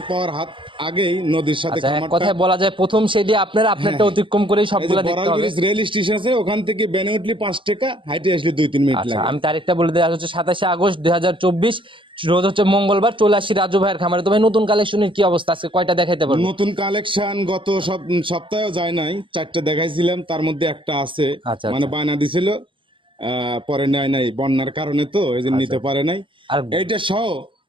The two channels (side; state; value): left; late; 0.25 ms